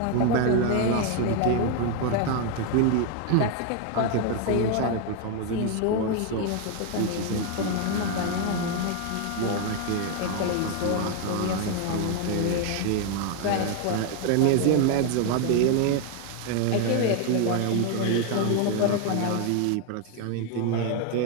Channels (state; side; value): different; both; correlation 0.01